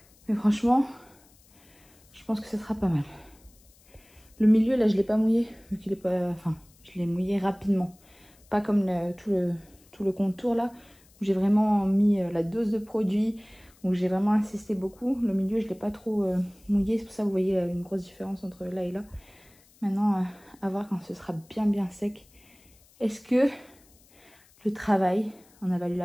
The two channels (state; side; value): noise; left; hiss, 29 dB below the sound